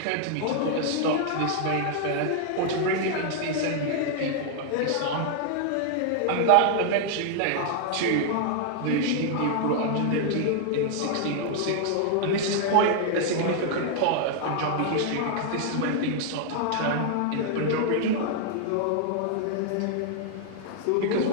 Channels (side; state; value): both; different; correlation 0.00